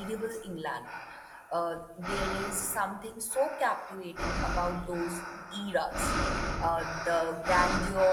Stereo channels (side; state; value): both; identical; correlation 1.00